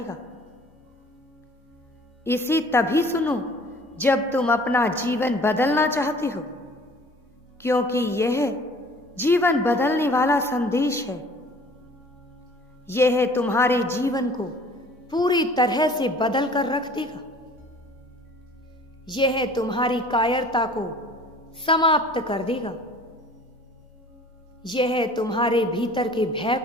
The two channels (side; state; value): both; normal; correlation 0.50